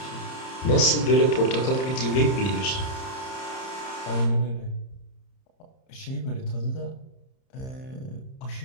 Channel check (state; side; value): late; right; 30 ms